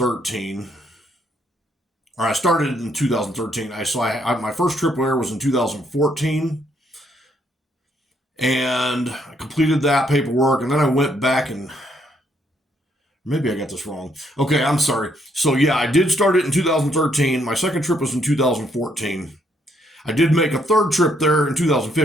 Or I started in 2013. My first trip there was in 2014. And I completed that paperwork. And then I went back and maybe I got this wrong. Okay, I'm sorry. So yeah, I did start it in 2013. My second trip was in 2014. I did make a third trip there in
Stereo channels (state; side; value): normal; both; correlation 0.72